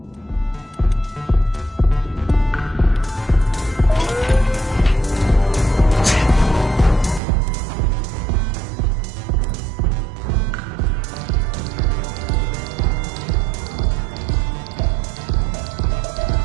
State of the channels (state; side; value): drops out; left; at 7.2 s